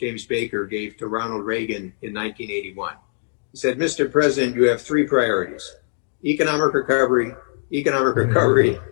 Baker, gave to Ronald Reagan in 1981. He said, Mr. President, you have 3 priorities: economic recovery,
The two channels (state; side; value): silent; right; digital silence